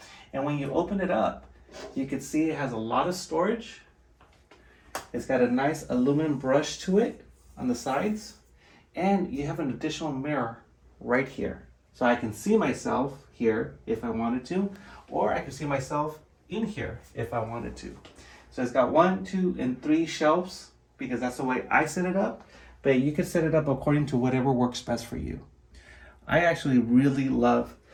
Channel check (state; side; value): identical; both; correlation 1.00